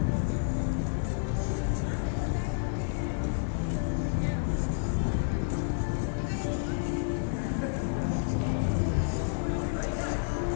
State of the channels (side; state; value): right; silent; 58 dB below the other